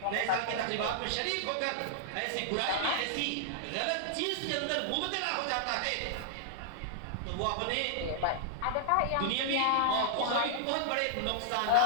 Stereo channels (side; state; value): both; different; correlation -0.01